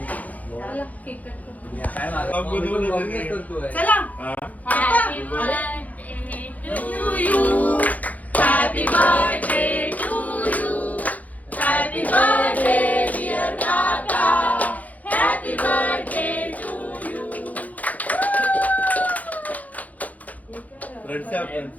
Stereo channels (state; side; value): late; right; 0.077 ms